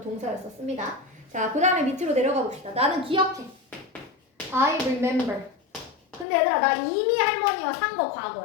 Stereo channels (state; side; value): drops out; right; at 6.2 s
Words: 동사였었습니다. 자, 그 다음에 밑으로 내려가 봅시다. 나는 기억해. I remember. 근데 얘들아 나 이미 할머니와 산 거